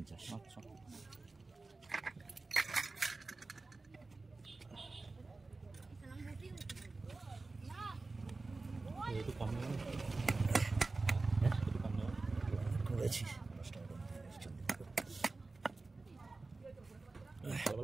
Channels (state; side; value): quieter; left; 3.5 dB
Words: আচ্ছা একটু কম নেব, একটু কম নেব করেছি।